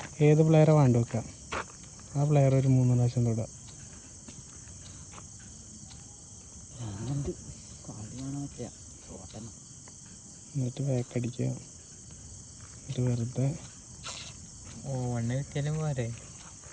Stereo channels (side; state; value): both; identical; correlation 1.00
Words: ഏത് പ്ലെയറെ വേണ്ട വെക്കാം, ആ പ്ലെയർ ഒരു 3 പ്രാവശ്യം തൊടുക. എന്നിട്ട് ബാക്കടിക്കുക. എന്നിട്ട് വെറുതെ 1 കിട്ടിയാലും പോരെ.